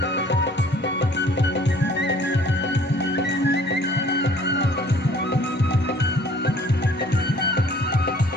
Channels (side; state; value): both; normal; correlation 0.54